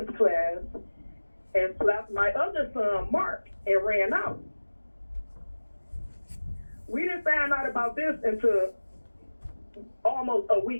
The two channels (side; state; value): both; inverted; correlation -1.00